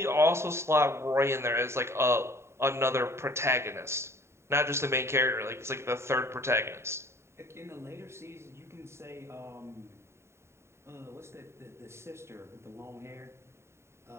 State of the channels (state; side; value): late; left; 0.13 ms